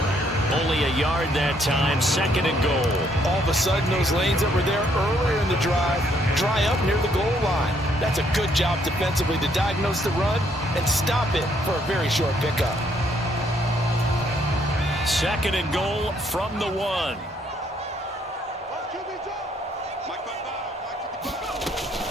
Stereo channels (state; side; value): normal; both; correlation 0.69